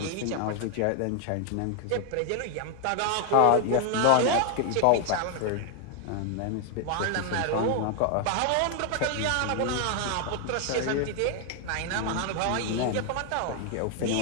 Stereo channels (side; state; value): both; different; correlation 0.00